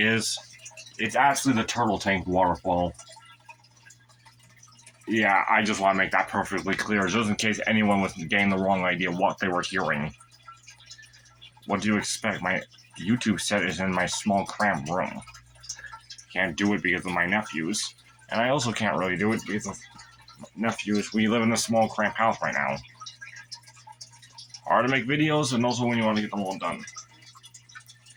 It's actually the turtle tank waterfall. Yeah, I just want to make that perfectly clear, just in case anyone was getting the wrong idea what they were hearing. What do you expect? My YouTube set is in my small cramped room. Can't do it because of my nephews. And I also can't really do it because of nephews. We live in a small cramped house right now. Hard to make videos, and also when you want to get them all done.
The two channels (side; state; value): both; identical; correlation 1.00